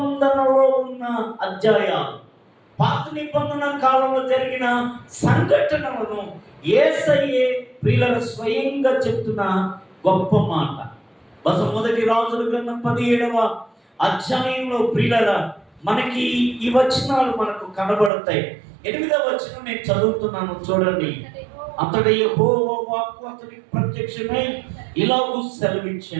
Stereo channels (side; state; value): left; drops out; at 18.1 s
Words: ఉన్న అధ్యాయాలు, పాత నిబంధన కాలంలో జరిగిన సంఘటనలను యేసయ్యే ప్రియుల స్వయంగా చెప్తున్న గొప్ప మాట. బహుశా మొదటి రాజుల గ్రంథం 17వ అధ్యాయంలో ప్రియుల మనకి ఈ వచనాలు మనకు కనబడతాయి. 8వ వచనం నేను చదువుతున్నాను, చూడండి. అంతట యెహోవా వాక్కు అతనికి ప్రత్యక్షమై ఇలాగూ